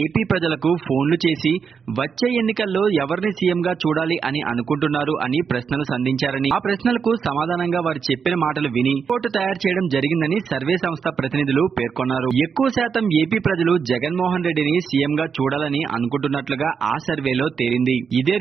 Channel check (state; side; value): quieter; left; 6.2 dB